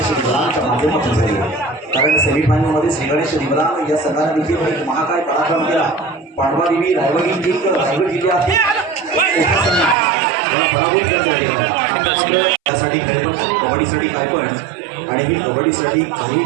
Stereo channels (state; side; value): drops out; left; at 10.0 s